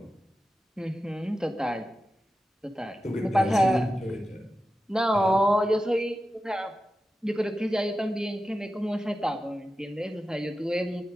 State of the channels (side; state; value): both; normal; correlation 0.92